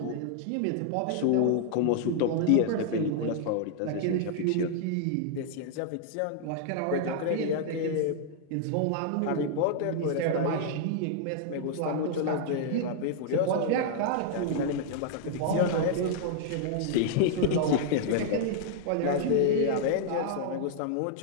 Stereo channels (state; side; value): different; both; correlation -0.01